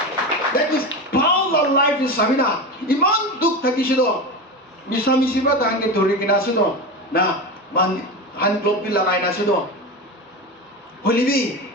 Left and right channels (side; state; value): both; normal; correlation 0.22